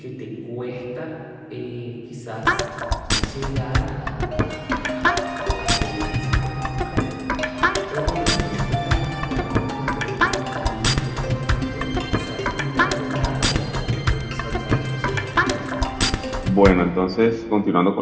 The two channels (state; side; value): identical; both; correlation 1.00